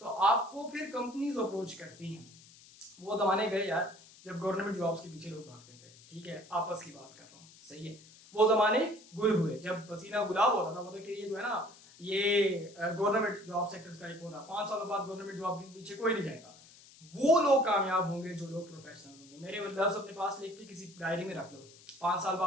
तो आपको फिर कंपनीज अप्रोच करती हैं। वो जमाने गए यार जब गवर्नमेंट जॉब्स के पीछे लोग भागते थे, ठीक है, आपस की बात कर रहा हूँ, सही है। वो जमाने गुल हुए जब पसीना गुलाब होता था, मतलब कि ये जो है ना ये गवर्नमेंट जॉब सेक्टर्स का एक होता, 5 सालों बाद गवर्नमेंट जॉब के पीछे कोई नहीं जाएगा। वो लोग कामयाब होंगे जो लोग प्रोफेशनल होंगे। मेरे लफ्ज़ अपने पास लिख के किसी डायरी में रख लो, 5 साल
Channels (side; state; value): left; noise; hiss, 22 dB below the sound